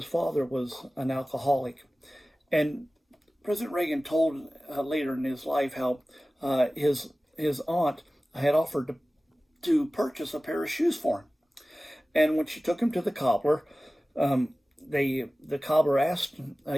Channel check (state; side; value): normal; both; correlation 0.97